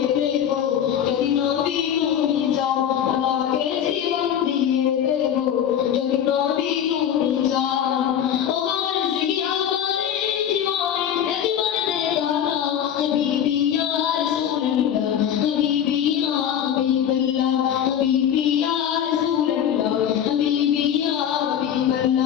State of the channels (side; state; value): right; quieter; 9.5 dB